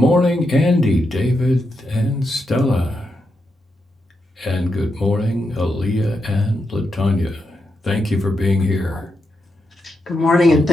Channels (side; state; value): both; normal; correlation 0.85